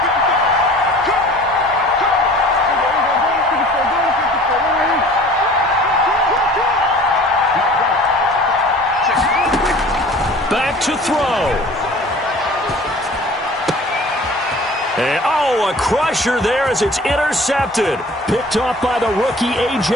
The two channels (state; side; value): normal; both; correlation 0.46